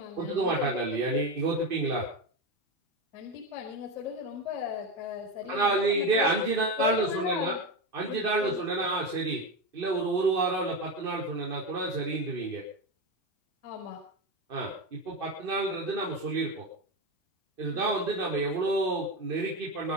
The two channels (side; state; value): left; late; 2.6 ms